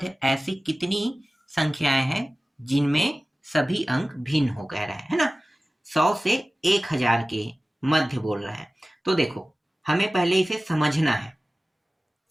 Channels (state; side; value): normal; both; correlation 0.97